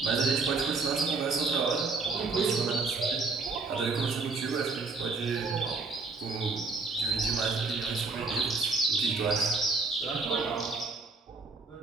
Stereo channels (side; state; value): left; quieter; 4.0 dB